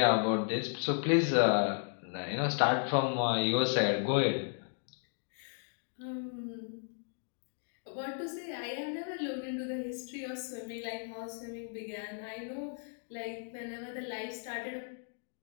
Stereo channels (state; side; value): silent; right; 55 dB below the other